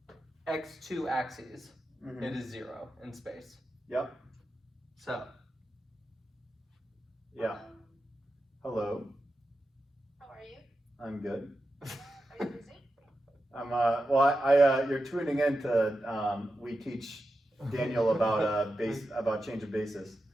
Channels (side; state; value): both; normal; correlation 0.90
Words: x2 axes, it is 0 in space. Yep. So. Yeah. Hello. How are you? I'm good. Are you busy? I'm you're tuning in to we teach Daniel about about change of basis.